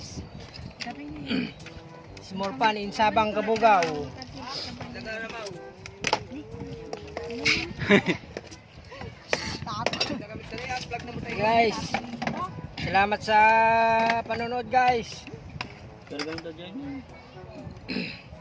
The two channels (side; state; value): both; identical; correlation 1.00